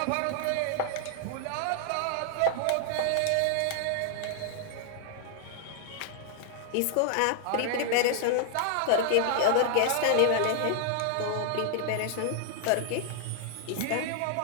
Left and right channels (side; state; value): both; different; correlation -0.01